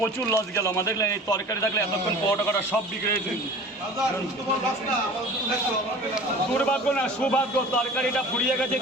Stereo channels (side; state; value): both; normal; correlation 0.41